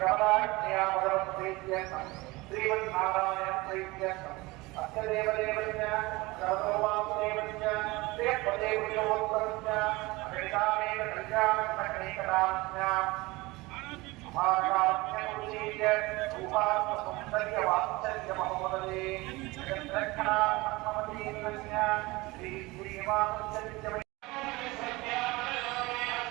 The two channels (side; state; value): left; quieter; 22.1 dB